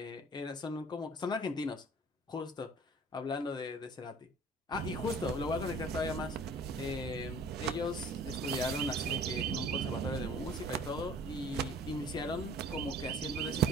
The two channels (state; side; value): normal; both; correlation 0.49